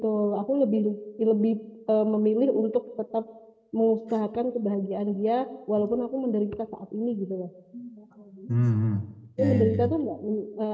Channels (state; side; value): identical; both; correlation 1.00